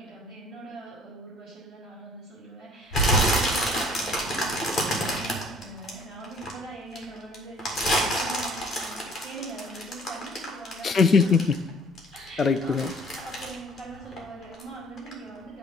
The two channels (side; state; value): both; normal; correlation 0.55